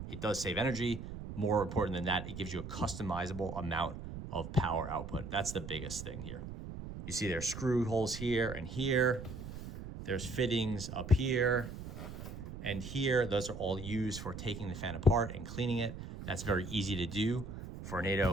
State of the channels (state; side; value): noise; right; rumble, 9 dB below the sound